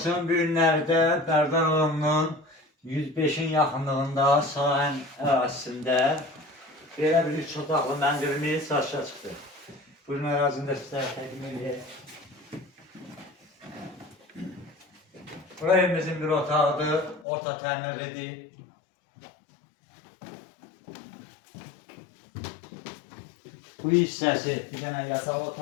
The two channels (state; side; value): drops out; right; at 17.2 s